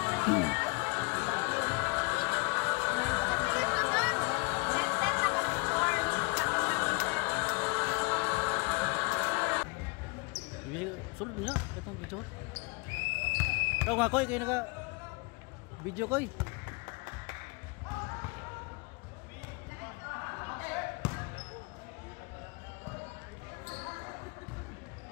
Sulod niya, itong video. Ikaw nga koy, kayo naka video koy.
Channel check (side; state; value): right; quieter; 29.7 dB